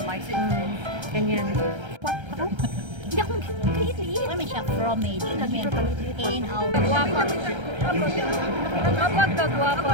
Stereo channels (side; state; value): left; late; 1.3 ms